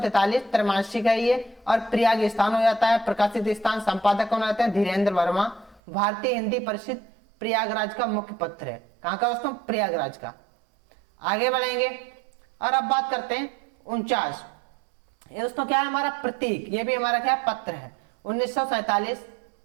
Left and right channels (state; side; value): drops out; left; at 5.8 s